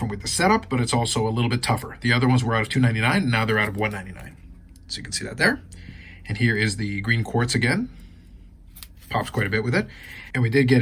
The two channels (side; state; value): both; identical; correlation 1.00